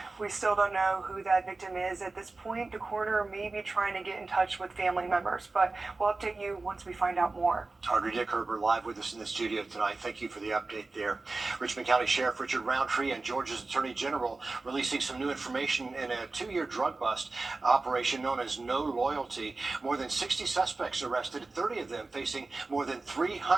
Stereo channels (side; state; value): left; quieter; 3.5 dB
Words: We still don't know who that victim is at this point. The coroner may be trying to get in touch with family members, but we'll update you once we find out more. Audrey Dickerber live with us in the studio tonight. Thank you for the update there. Richmond County Sheriff Richard Roundtree and Georgia's Attorney General releasing some new information in a 2-year drug bust operation known as No Loyalty. More than 60 suspects arrested, 30 of them facing more than